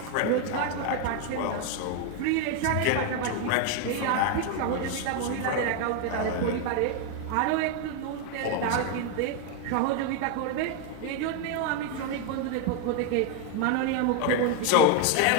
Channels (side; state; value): both; different; correlation 0.01